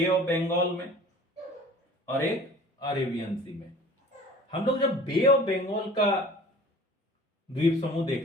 ऑफ बंगाल में और एक अरेबियन सी में। हम लोग जब बे ऑफ बंगाल का द्वीप समूह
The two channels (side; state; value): both; normal; correlation 0.45